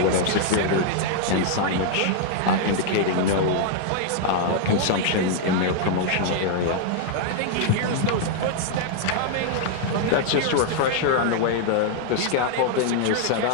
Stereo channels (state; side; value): different; both; correlation 0.00